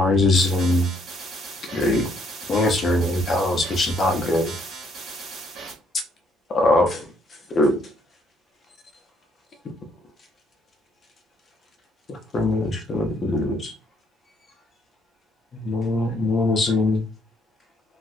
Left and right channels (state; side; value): normal; both; correlation 0.68